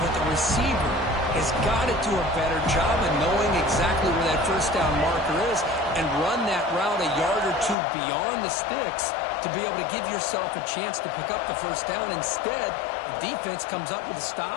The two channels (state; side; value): drops out; right; at 7.8 s